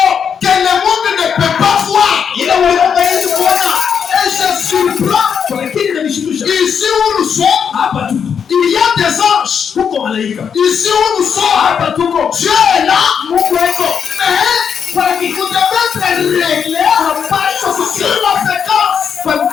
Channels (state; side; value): quieter; right; 7.2 dB